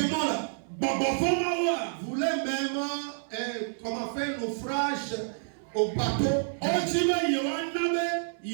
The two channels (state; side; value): silent; left; 59 dB below the other